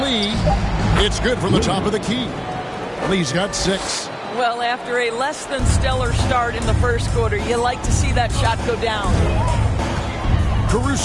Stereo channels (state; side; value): identical; both; correlation 1.00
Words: It's good from the top of the key. Lee's got 6. Well, after a less than stellar start in the first quarter, you like to see that shot go down.